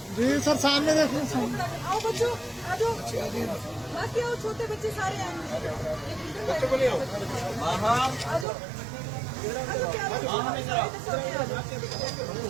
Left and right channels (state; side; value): drops out; left; at 8.5 s